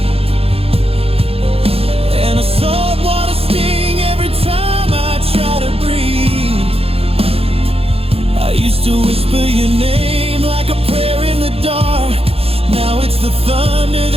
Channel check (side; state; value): left; late; 0.28 ms